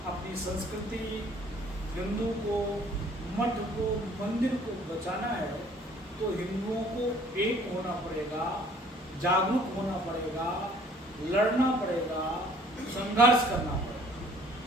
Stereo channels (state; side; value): normal; both; correlation 0.56